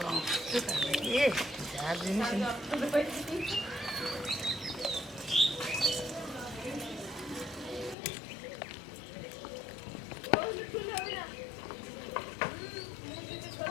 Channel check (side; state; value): right; drops out; at 8.0 s